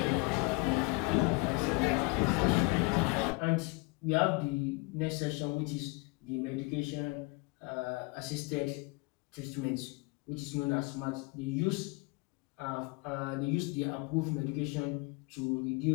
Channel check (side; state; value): right; quieter; 27.4 dB